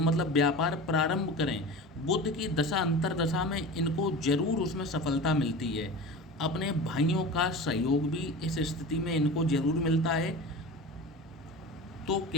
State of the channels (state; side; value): normal; both; correlation 0.33